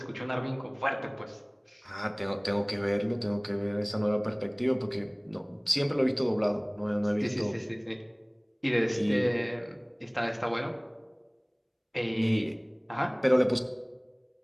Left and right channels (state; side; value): identical; both; correlation 1.00